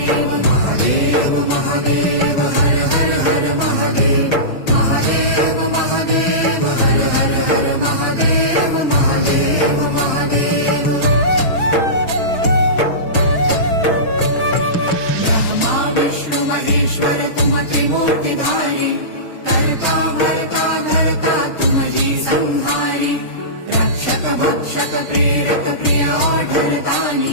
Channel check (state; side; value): late; right; 6.2 ms